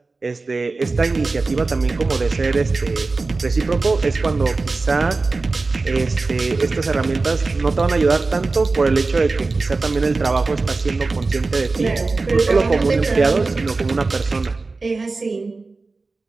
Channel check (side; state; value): left; quieter; 3.7 dB